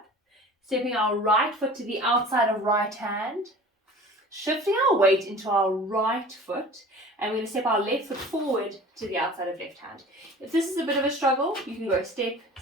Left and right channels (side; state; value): both; normal; correlation 0.42